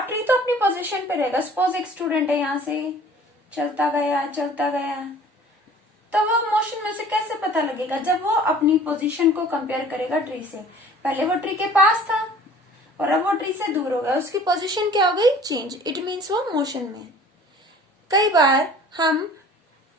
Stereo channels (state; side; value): normal; both; correlation 0.48